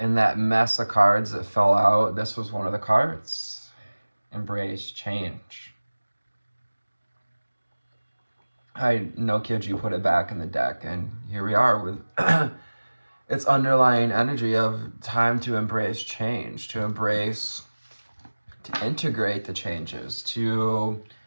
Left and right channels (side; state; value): both; inverted; correlation -1.00